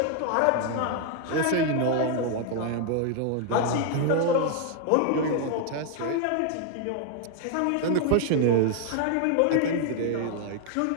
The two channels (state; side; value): different; both; correlation 0.00